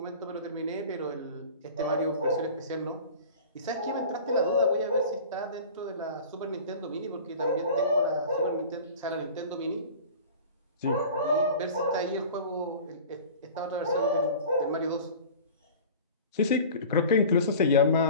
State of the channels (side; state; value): both; inverted; correlation -0.39